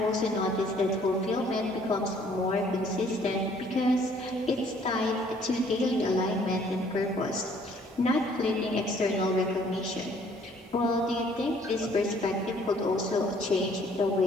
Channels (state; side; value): normal; both; correlation 0.60